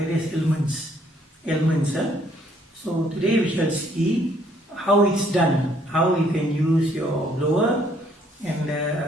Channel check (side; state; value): both; normal; correlation 0.65